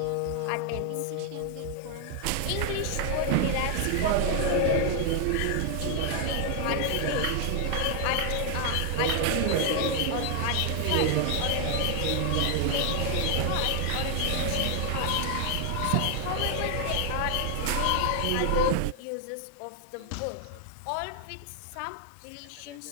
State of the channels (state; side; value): different; both; correlation 0.00